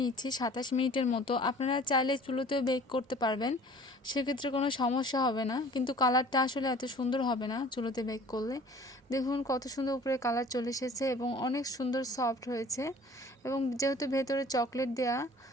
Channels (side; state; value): both; normal; correlation 0.49